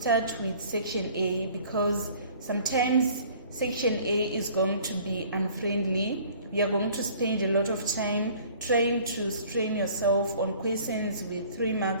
with section A because sometimes section A is going to be unfriendly. You are going to spend a lot of time trying to strain yourself on questions with 3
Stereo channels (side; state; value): both; inverted; correlation -0.52